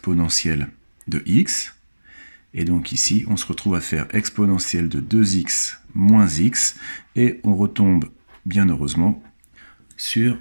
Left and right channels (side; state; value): both; inverted; correlation -1.00